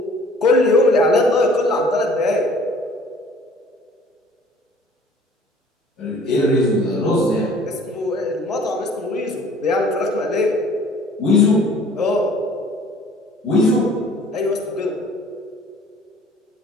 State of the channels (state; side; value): normal; both; correlation 0.52